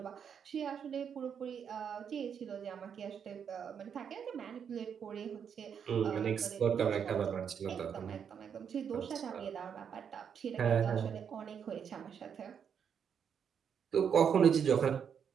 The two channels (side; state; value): left; quieter; 7.6 dB